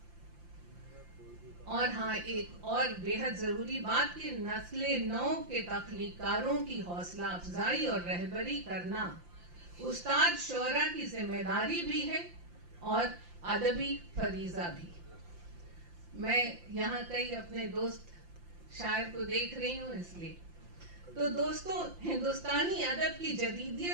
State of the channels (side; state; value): left; late; 5.8 ms